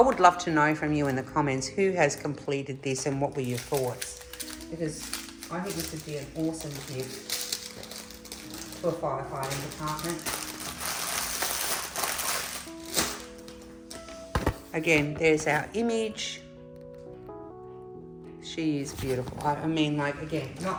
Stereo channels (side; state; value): both; identical; correlation 1.00